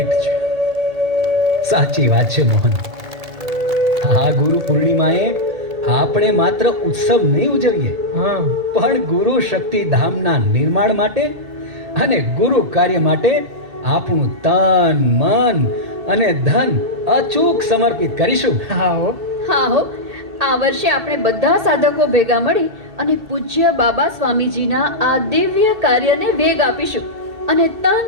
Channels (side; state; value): left; late; 2.3 ms